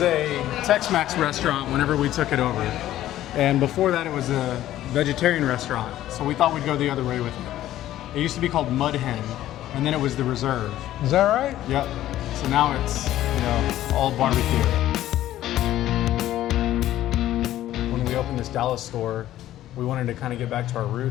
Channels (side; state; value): right; quieter; 13.5 dB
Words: a Tex-Mex restaurant whenever we took it over. And before that, it was a vegetarian restaurant. So we thought we'd go the other way with it. It used to be called Mud Hen, and then it was the Reserve. Is that right? Yep. So now it's, all barbecue. When we opened this Dallas store, we wanted to kind of get back to our